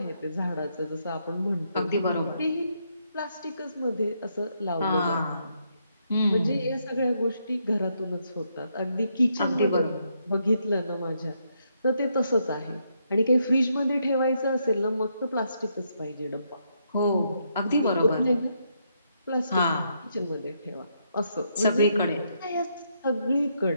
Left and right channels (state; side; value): inverted; both; correlation -0.77